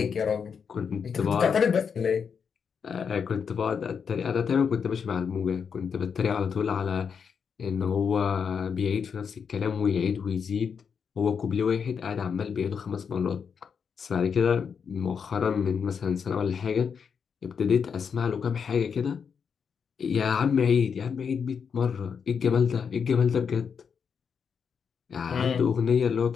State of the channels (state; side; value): quieter; right; 6.6 dB